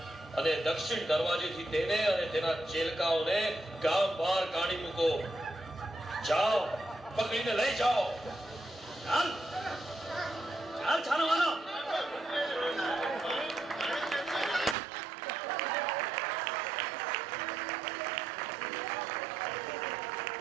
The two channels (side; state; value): left; drops out; at 14.8 s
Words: અને દક્ષિણ દરવાજેથી તેને અને તેના ચેલકાઓને ગામ બહાર કાઢી મૂકો. જાઓ, પકડીને લઈ જાઓ. ચાલ ચાલ છાનવાનો.